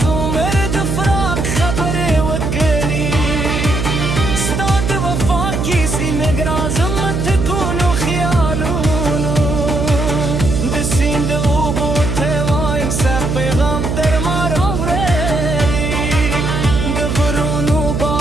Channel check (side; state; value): right; noise; hum, 1 dB below the sound